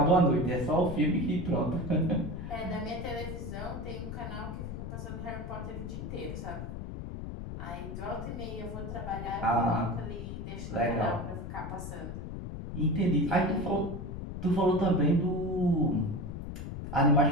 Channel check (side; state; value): left; noise; rumble, 7 dB below the sound